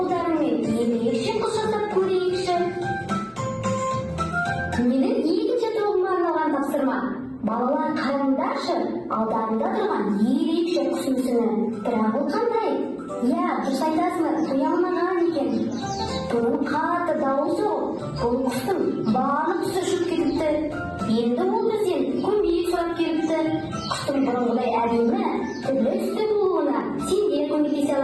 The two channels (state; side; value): identical; both; correlation 1.00